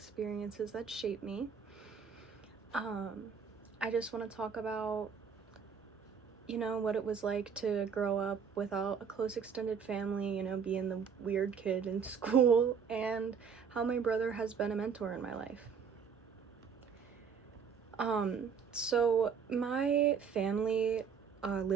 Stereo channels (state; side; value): quieter; left; 6.4 dB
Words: that shaped me. I just want to talk about, what it was like to grow up without a close extended family, being the weird kid in school, and how my brother has been a mentor in my life. So my family